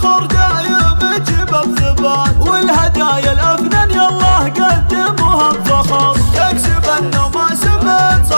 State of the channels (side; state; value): both; inverted; correlation -1.00